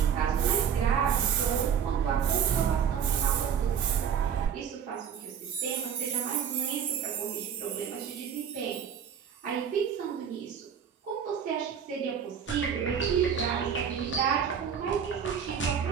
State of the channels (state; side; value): quieter; left; 7.8 dB